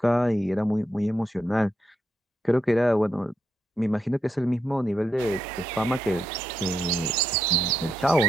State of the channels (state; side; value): normal; both; correlation 0.82